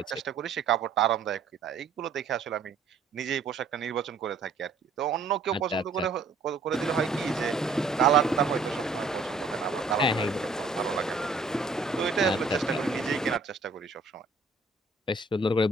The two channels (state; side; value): quieter; left; 4.0 dB